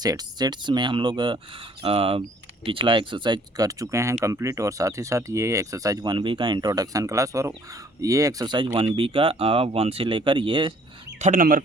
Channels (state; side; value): normal; both; correlation 0.59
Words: में हम लोग पिछला एक्सरसाइज कर चुके हैं कंप्लीट और साथ ही साथ ये एक्सरसाइज 1B का इंट्रोडक्शन क्लास और ये एक्सरसाइज 1B का 1 से लेकर ये 3rd नंबर